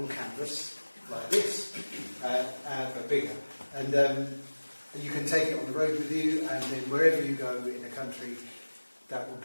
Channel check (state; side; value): inverted; both; correlation -1.00